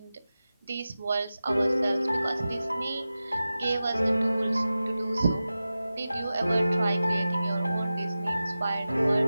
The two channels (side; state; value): both; inverted; correlation -0.94